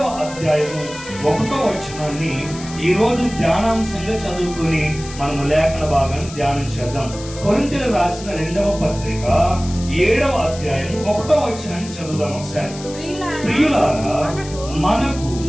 అధ్యాయము 1వ వచనాన్ని ఈరోజు ధ్యానాంశంగా చదువుకొని మనము లేఖన భాగాన్ని ధ్యానం చేద్దాం. కొరింథీయులకు రాసిన 2వ పత్రిక 7వ అధ్యాయం 1వ వచనాన్ని చదువుదాం ఒకసారి. ప్రియులారా, మనకు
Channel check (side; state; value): left; noise; hiss, 15 dB below the sound